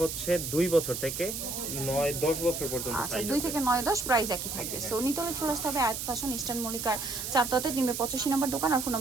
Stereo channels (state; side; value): noise; right; hiss, 5 dB below the sound